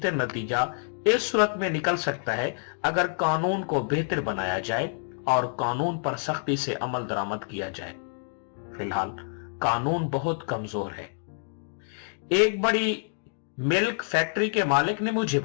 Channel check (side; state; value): right; silent; digital silence